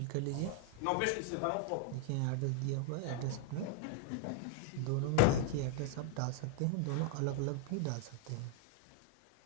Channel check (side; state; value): both; different; correlation 0.00